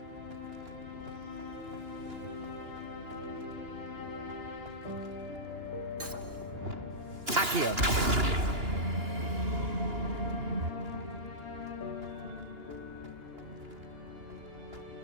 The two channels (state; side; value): late; left; 2.9 ms